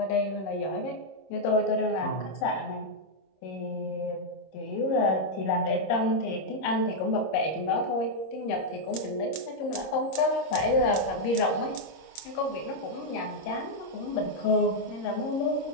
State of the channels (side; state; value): right; late; 26 ms